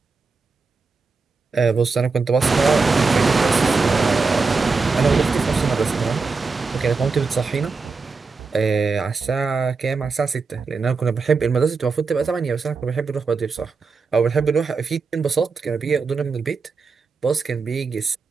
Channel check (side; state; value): left; quieter; 4.5 dB